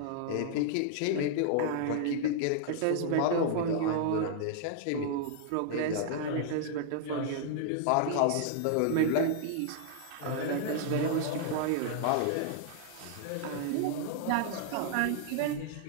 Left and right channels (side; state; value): both; different; correlation -0.01